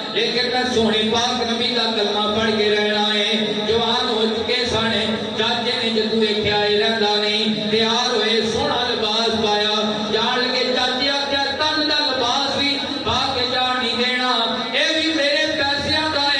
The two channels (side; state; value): both; identical; correlation 1.00